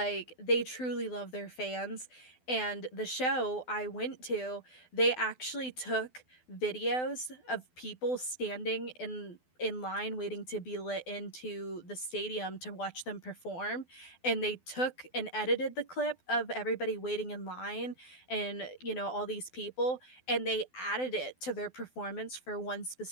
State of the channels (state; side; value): late; right; 12 ms